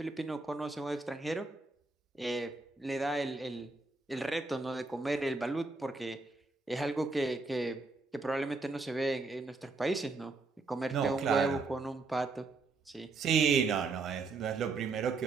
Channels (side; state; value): left; quieter; 3.7 dB